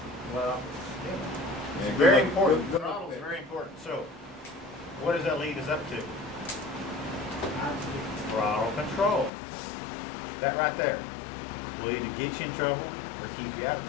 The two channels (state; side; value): drops out; right; at 9.3 s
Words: Yeah, It's good very luck- important. good luck Throttle with is that. very important. So, what does that lead us up to? Throttle control. That right there will either get you in trouble or keep you out of